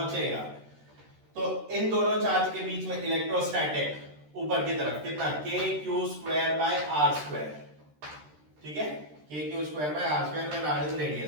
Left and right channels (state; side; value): late; left; 13 ms